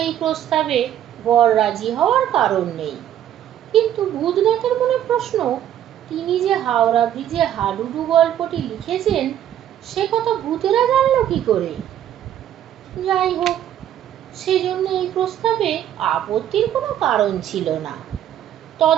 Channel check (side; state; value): left; quieter; 11.0 dB